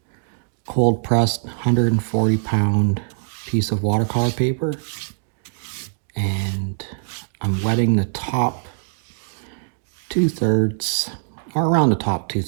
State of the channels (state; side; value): silent; left; digital silence